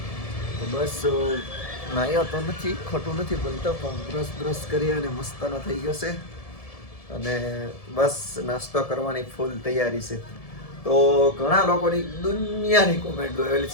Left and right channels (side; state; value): right; late; 1.7 ms